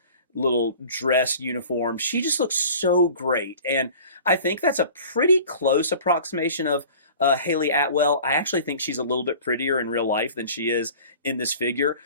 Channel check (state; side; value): inverted; both; correlation -0.43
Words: little dress uniform. She just looks so great. And I think that's a pretty close approximation of Haley Atwell. I actually think she's a little bit prettier in real life than she is in this figure,